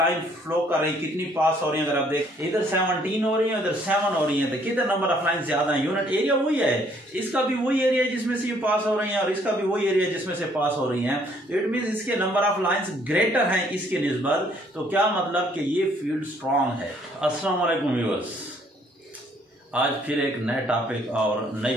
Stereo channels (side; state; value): both; normal; correlation 0.64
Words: फ्लो कर रही, कितनी पास हो रही है। अगर आप देख इधर 17 हो रही है, इधर 7 हो रही है, तो कितने नंबर ऑफ लाइन ज्यादा है। यूनिट एरिया वही है, इसका भी वही एरिया जिसमें से ये पास हो रही है और इसका भी वही एरिया जिसमें से पास हो रही है। तो इट मीन इसके नंबर ऑफ लाइंस ग्रेटर हैं इसके निस्बत। तो क्या मतलब कि ये फील्ड स्ट्रांग है। अस्सलाम वालेकुम व्यूअर्स, आज फिर एक नए टॉपिक और नई